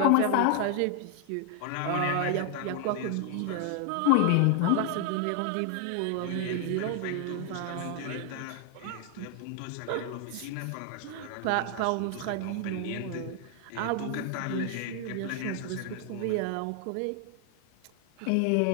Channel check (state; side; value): different; both; correlation 0.00